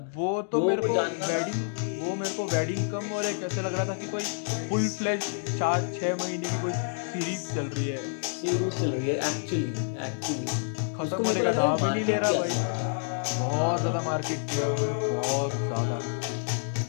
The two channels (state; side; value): silent; right; digital silence